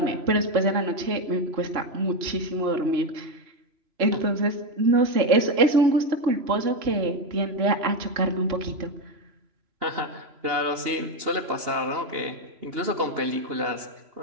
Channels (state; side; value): late; left; 3.0 ms